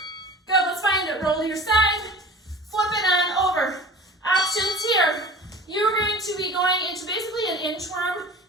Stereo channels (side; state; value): both; normal; correlation 0.39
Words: Good, let's find it. Roll to your side, flip it on over. Options here. You're going to be going into basically an inchworm